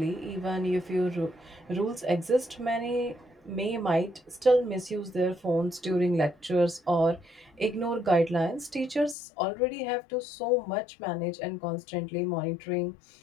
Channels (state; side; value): drops out; right; at 9.2 s